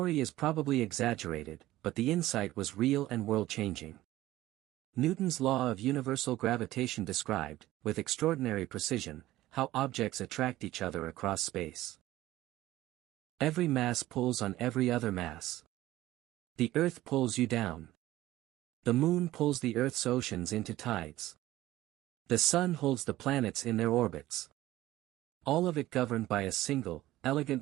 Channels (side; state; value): left; quieter; 15.9 dB